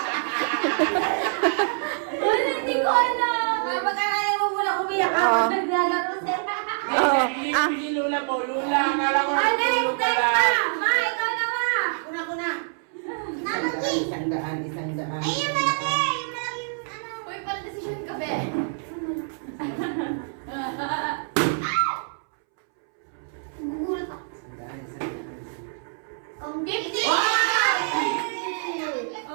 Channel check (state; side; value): silent; left; 61 dB below the other